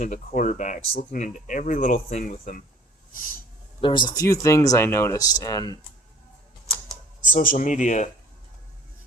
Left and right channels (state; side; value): normal; both; correlation 0.52